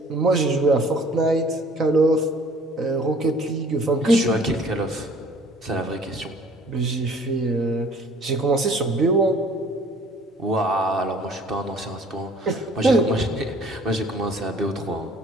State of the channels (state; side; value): normal; both; correlation 0.53